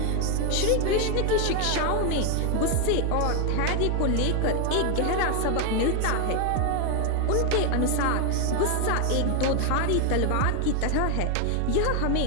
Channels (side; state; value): both; different; correlation 0.01